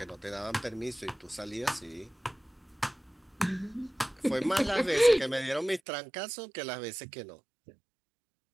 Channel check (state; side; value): drops out; left; at 5.8 s